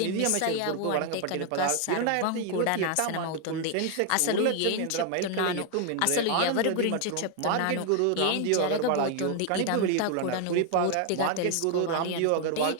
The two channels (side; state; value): both; different; correlation 0.00